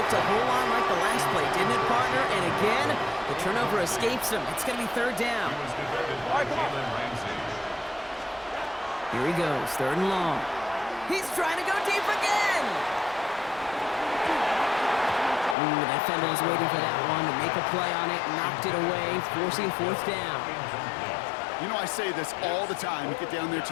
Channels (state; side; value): drops out; right; at 15.6 s